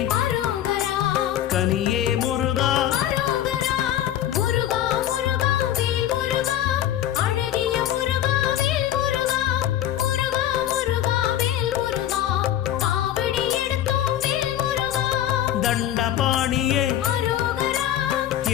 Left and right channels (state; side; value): quieter; right; 11.7 dB